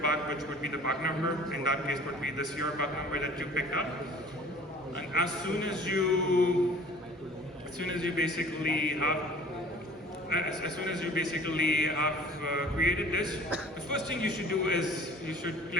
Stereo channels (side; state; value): both; normal; correlation 0.48